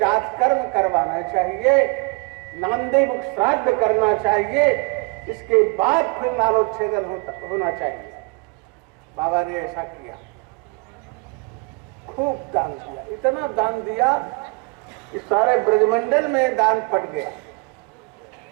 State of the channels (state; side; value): quieter; left; 29.2 dB